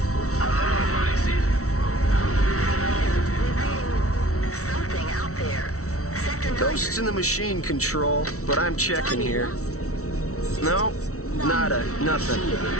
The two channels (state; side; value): late; right; 0.64 ms